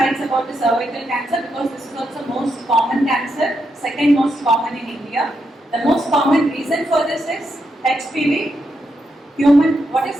about the cervical cancer, because this is also most common cancer, second most common in India. The most common reason for this is HPV, human, what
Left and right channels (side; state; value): both; normal; correlation 0.82